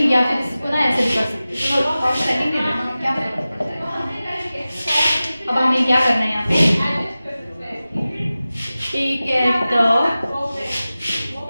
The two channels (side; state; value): both; inverted; correlation -0.96